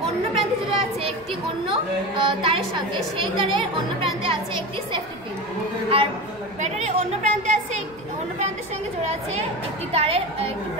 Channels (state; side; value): noise; left; rumble, 28 dB below the sound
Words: অন্য প্রান্তে জোড়া আছে একটি অন্য তারের সঙ্গে, সেই তারের অন্য প্রান্তে আছে একটি সেফটি পিন। আর ব্যাটারির অন্য প্রান্তের সঙ্গে জোড়া আছে একটি তারের একটি